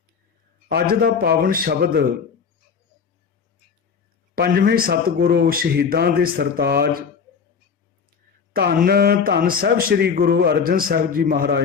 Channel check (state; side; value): quieter; right; 6.2 dB